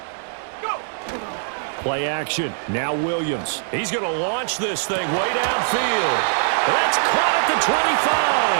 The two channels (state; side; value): silent; left; 61 dB below the other